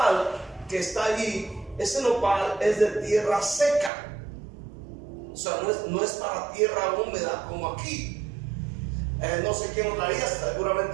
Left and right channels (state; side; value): drops out; left; at 3.9 s